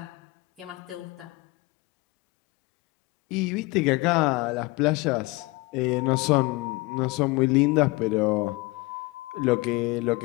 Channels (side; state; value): right; quieter; 23.5 dB